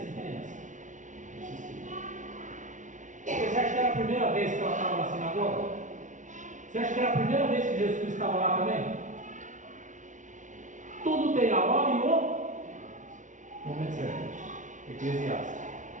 a diferença. Persistia. Você acha que era a primeira vez que ela estava na sinagoga? Você acha que era a primeira vez que Jesus Cristo estava lá também? Tudo tem a hora e o momento certo. Eclesiastes.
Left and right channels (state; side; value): late; left; 0.37 ms